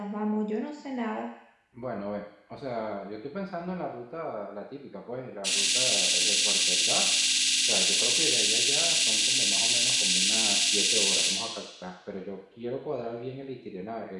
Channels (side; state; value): both; identical; correlation 1.00